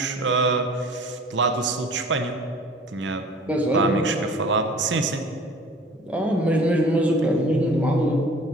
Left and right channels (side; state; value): both; normal; correlation 0.47